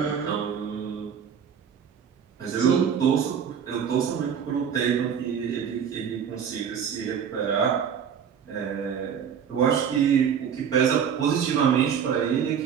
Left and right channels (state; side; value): quieter; left; 7.7 dB